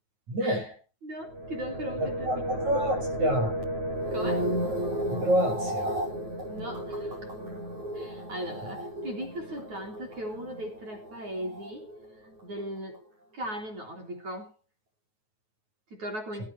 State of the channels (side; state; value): left; late; 9.3 ms